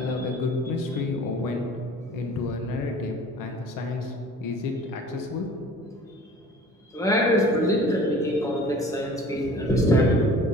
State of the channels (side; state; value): both; normal; correlation 0.46